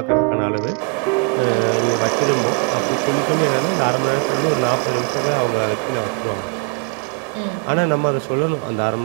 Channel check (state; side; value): quieter; left; 37.8 dB